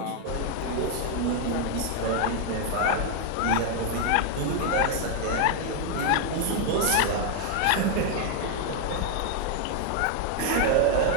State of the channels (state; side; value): different; both; correlation 0.00